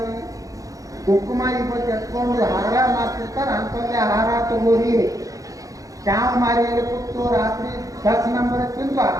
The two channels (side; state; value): left; late; 0.17 ms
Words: ಕುಂಕುಮ ಇವತ್ತು ಎತ್ಕೊಂಡು ಹಾರ ಮಾಡ್ತಿರ್ತಾರೆ ಅಂಥದ್ದೇ ಹಾರ ತಗೋರಿ. ಕ್ಯಾವ್ ಮಾರಿಯಲ್ಲಿ ಕೂತು ರಾತ್ರಿ 10 ನಂಬರ್ ತಿಂದು